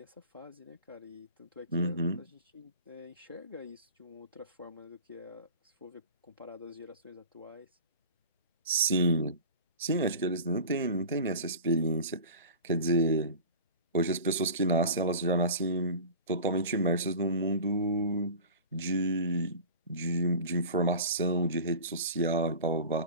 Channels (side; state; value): both; inverted; correlation -0.36